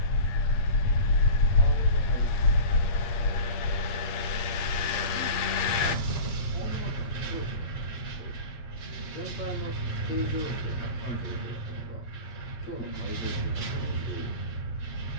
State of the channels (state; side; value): late; right; 8.4 ms